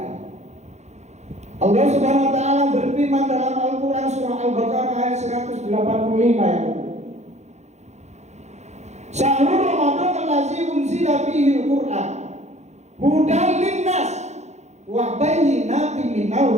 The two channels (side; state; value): left; late; 0.33 ms